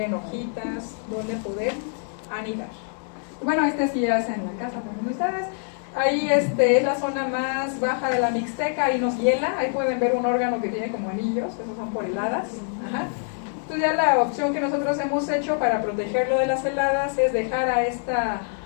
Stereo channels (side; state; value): right; silent; 56 dB below the other